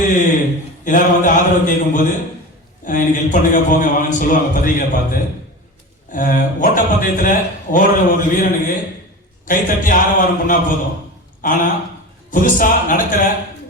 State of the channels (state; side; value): normal; both; correlation 0.29